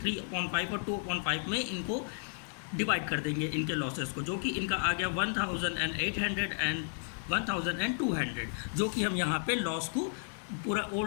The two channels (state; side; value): silent; right; digital silence